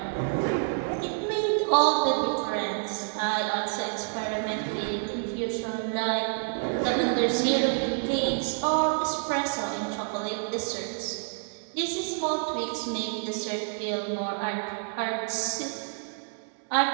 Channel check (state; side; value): silent; left; 59 dB below the other